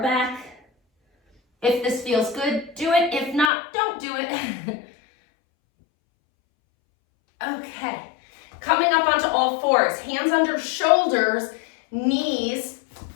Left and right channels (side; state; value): right; drops out; at 3.5 s